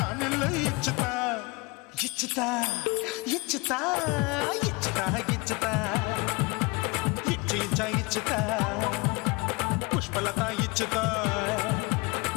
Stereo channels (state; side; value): quieter; right; 26.6 dB